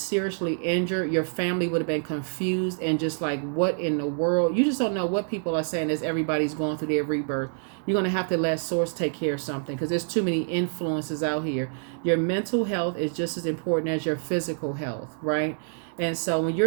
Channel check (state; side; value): silent; left; digital silence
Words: injured. Your family would have been confused and just like, what in the world? You just don't know what people are saying as everybody's going through their rebirth. You're going to have to let Source take care of something, because there's too many influences out here. Your mental health is just as important as your physical health, right? And so when